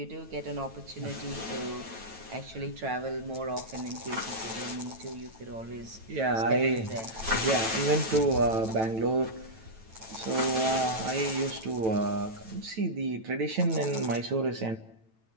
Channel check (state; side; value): late; left; 9.1 ms